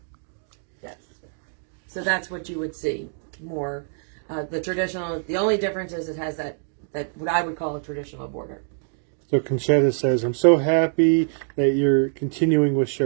Yes. So that's what you would see more. The traditional, the only difference is it has that what I would call a traditional border. So Conchetta says, I'm so happy that you're continuing with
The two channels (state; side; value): silent; left; digital silence